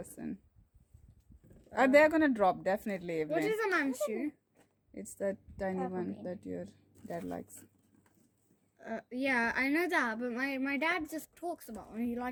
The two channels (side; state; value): both; identical; correlation 1.00